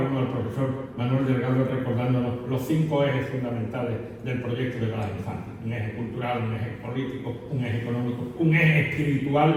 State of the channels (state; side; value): identical; both; correlation 1.00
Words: al profesor Manuel Delgado recordándonos los 5 ejes fundamentales del proyecto de Blas Infante: un eje cultural, un eje político, un eje económico, un eje